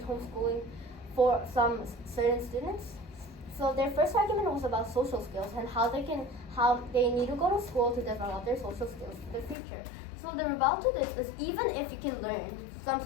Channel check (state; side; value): drops out; right; at 9.6 s